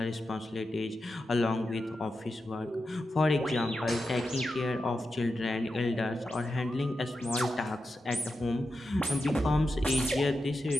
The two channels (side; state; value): both; normal; correlation 0.89